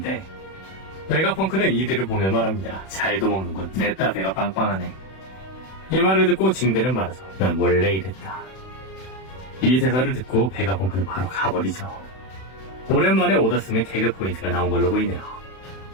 베가펑크는 이들을 보며 말합니다. 잘도 먹는군. 냈다 배가 빵빵하네. 이 말을 듣고 징베는 말하죠. 난 원래 이랬다. 이 대사를 듣고 베가펑크는 바로 가버리죠. 오랜만에 오다스의 개그 포인트가 나온 걸로 보이네요.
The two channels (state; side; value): late; right; 31 ms